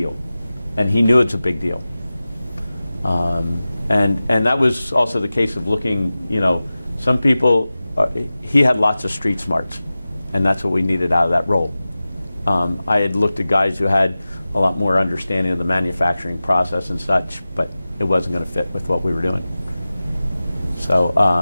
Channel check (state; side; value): inverted; both; correlation -0.96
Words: And he knew it's a big deal. And that was also the case of looking, some people, he had lots of street smarts, and that's what we needed out of that role. I had looked at guys who had a lot more understanding of the manufacturing process and such, but it wasn't going to fit with what we were doing. So,